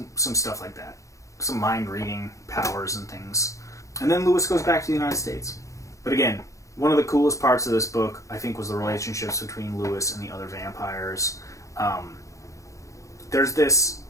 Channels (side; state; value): right; late; 0.15 ms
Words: stuff like that. Some mind reading powers and things. And then Louis goes back to the United States. But again, one of the coolest parts of this book, I think, was the relationships between Louis and the other vampires. There's this